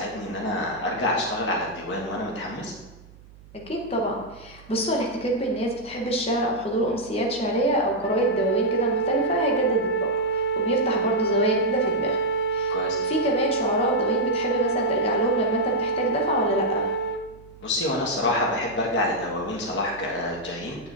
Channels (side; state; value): right; noise; hum, 23 dB below the sound